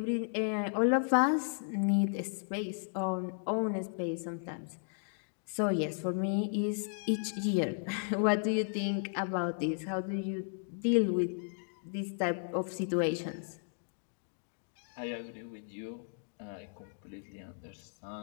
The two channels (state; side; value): silent; right; digital silence